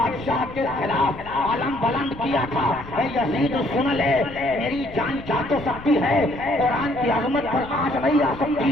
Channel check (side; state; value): left; noise; rumble, 17 dB below the sound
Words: کے خلاف علم بلند کیا تھا، اے یزید سن لے، میری جان جا تو سکتی ہے، قرآن کی عظمت پر آنچ نہیں آ سکتی،